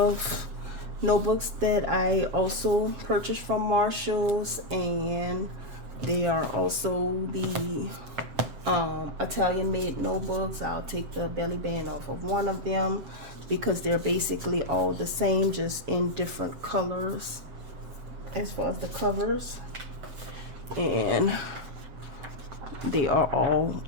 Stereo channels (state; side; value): late; left; 7.7 ms